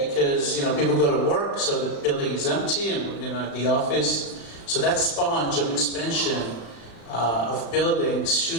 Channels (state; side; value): late; right; 36 ms